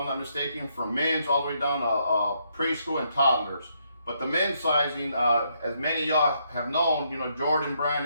not mistaken, from men's all the way down to preschool and toddlers. But the men's sizing, as many of y'all have known, Jordan brand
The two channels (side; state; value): both; inverted; correlation -0.75